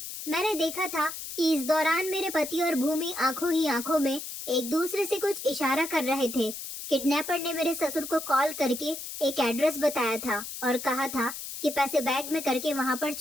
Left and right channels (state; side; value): noise; left; hiss, 8 dB below the sound